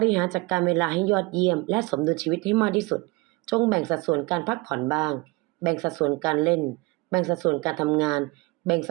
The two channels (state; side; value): quieter; left; 25.0 dB